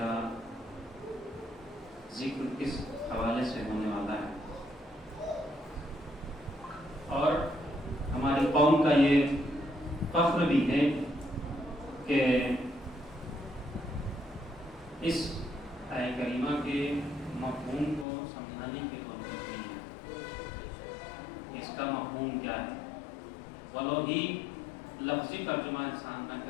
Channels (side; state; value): right; drops out; at 18.1 s